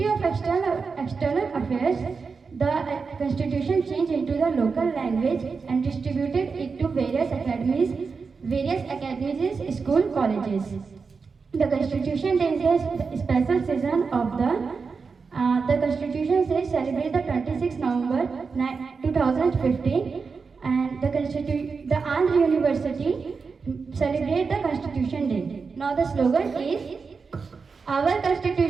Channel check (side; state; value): left; quieter; 5.0 dB